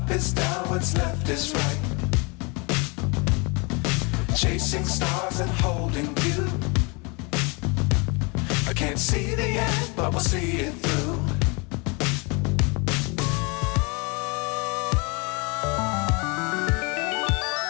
is down, what's left is right. Chasing stars and holding you. I can't see the end, but we'll see it through.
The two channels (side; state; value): right; quieter; 30.3 dB